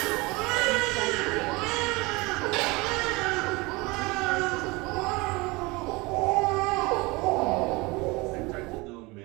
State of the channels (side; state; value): left; quieter; 24.5 dB